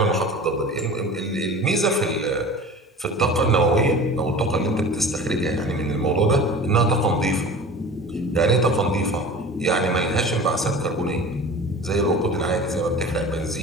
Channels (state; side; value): normal; both; correlation 0.38